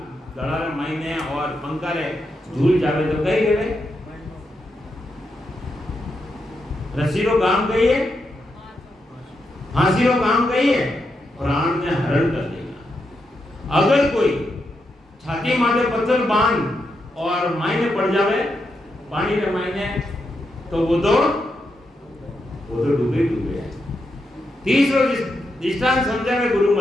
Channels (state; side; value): normal; both; correlation 0.84